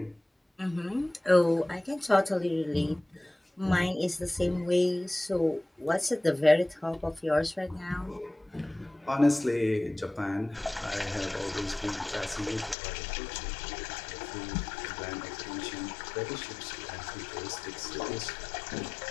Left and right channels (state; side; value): drops out; right; at 12.8 s